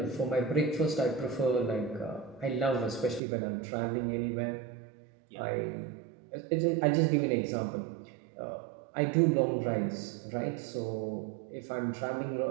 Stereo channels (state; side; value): drops out; left; at 3.2 s